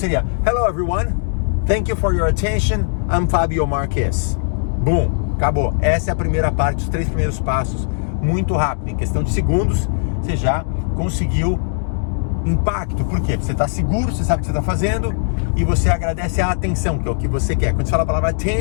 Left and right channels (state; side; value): silent; right; digital silence